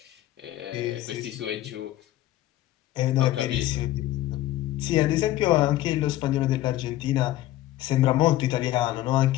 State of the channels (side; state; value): right; quieter; 14.7 dB